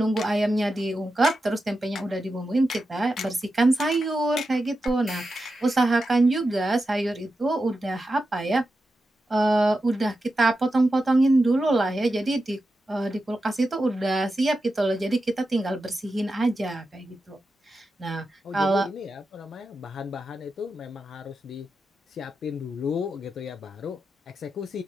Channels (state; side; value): normal; both; correlation 0.90